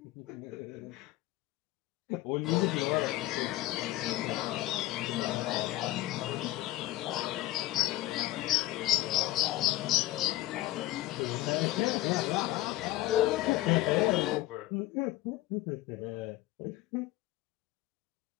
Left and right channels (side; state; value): right; quieter; 16.7 dB